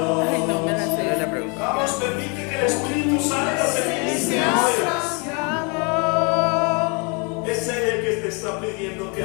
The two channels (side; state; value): right; quieter; 33.2 dB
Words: Ay, no me la sé. Vamos, permite que el Espíritu Santo te ministre hoy. Es Él el que te está pidiendo que